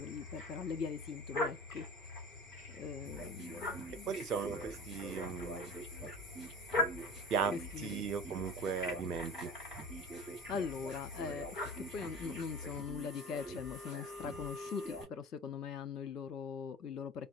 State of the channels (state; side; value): normal; both; correlation 0.34